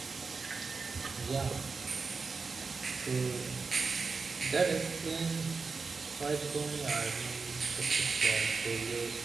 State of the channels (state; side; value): quieter; left; 4.6 dB